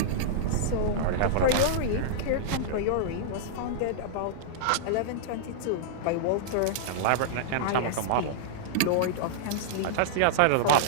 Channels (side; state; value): both; different; correlation -0.02